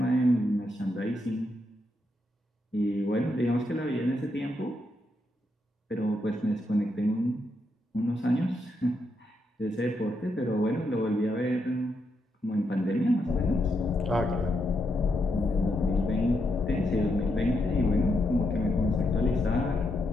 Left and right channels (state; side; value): normal; both; correlation 0.81